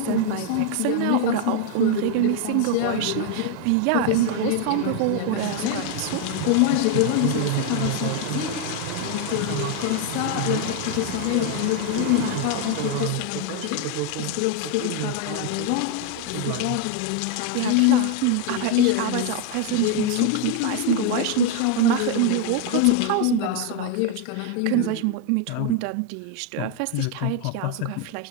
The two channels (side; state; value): both; different; correlation 0.01